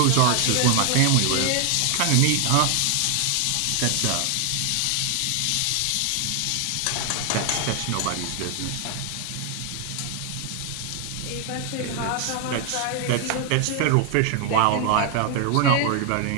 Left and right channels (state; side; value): different; both; correlation 0.00